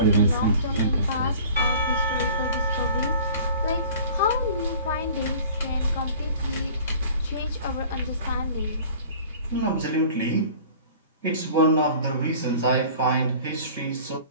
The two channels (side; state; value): both; inverted; correlation -0.46